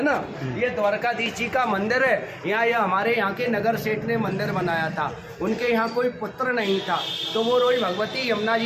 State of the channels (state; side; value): identical; both; correlation 1.00